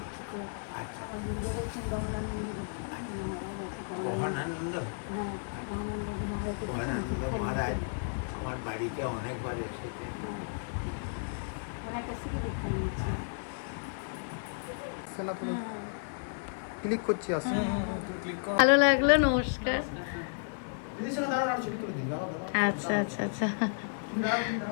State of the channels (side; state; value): right; silent; digital silence